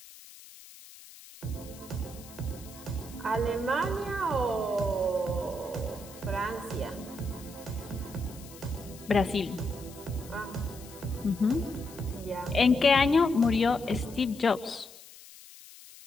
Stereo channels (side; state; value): left; noise; hiss, 19 dB below the sound